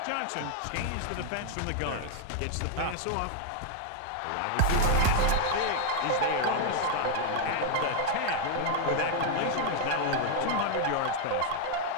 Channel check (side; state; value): both; different; correlation 0.00